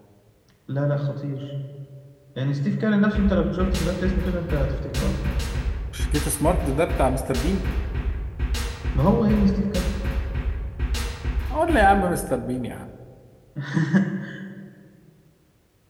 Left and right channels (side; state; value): both; identical; correlation 1.00